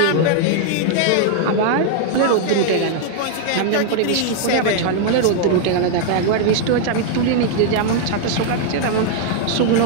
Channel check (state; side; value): different; both; correlation 0.00